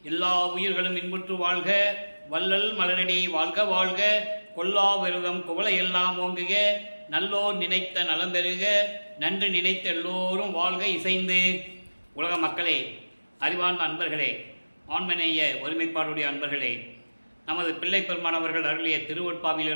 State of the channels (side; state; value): both; inverted; correlation -1.00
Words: எல்லா உயிர்களும் இன்புற்று வாழ்க, வள்ளல் மலரடி வாழ்க வாழ்க. கொல்லா விரதம் குவளை எல்லாம் ஓங்குக, நல்லோர் நினைத்த நலம் பெறுக, நன்று நினைத்த எல்லோரும் வாழ்க இசைந்து. உலக மக்களே, அறிவார்ந்த அன்பர்களே, ஆண்மநேய ஒருமைப்பாடுடைய அன்பர்களே, நமது பிள்ளை பெருமானவர்கள் அருளிய